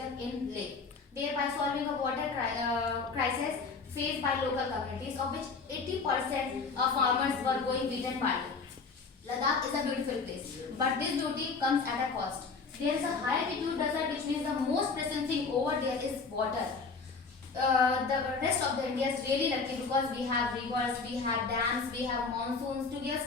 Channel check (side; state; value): right; quieter; 4.6 dB